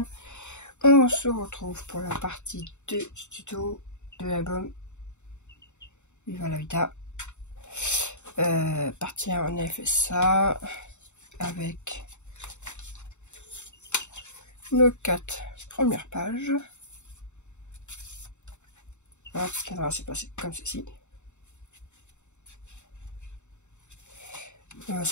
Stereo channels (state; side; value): late; right; 0.83 ms